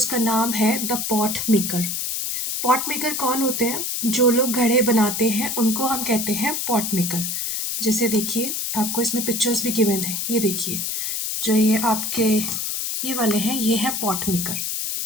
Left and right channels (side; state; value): left; noise; hiss, 2 dB below the sound